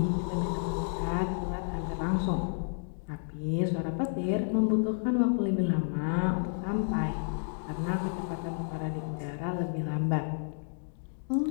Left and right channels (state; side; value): silent; right; digital silence